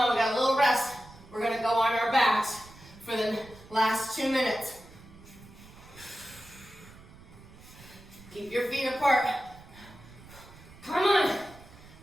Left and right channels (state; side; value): noise; right; rumble, 21 dB below the sound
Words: we got a little rest. We're gonna go on our backs for the last 2 minutes. Keep your feet apart. Come on.